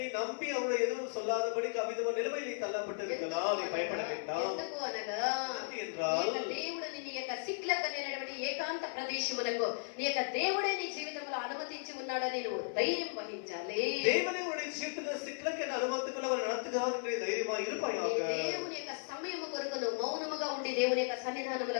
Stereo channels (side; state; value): right; silent; 54 dB below the other